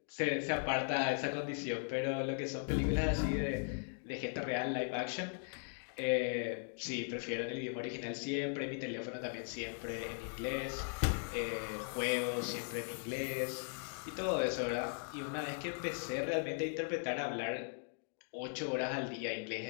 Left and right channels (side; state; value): right; silent; 52 dB below the other